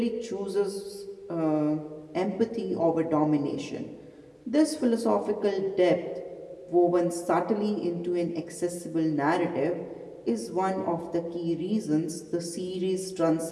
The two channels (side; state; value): both; identical; correlation 1.00